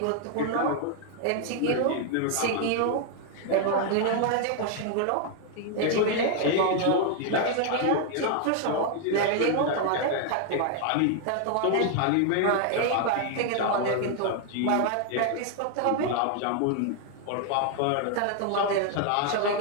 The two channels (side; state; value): both; different; correlation 0.00